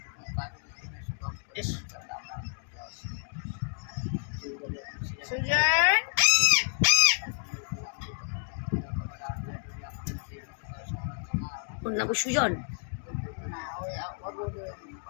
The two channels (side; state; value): right; silent; digital silence